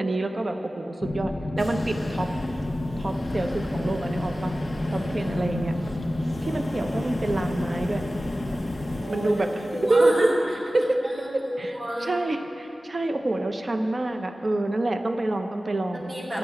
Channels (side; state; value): both; normal; correlation 0.96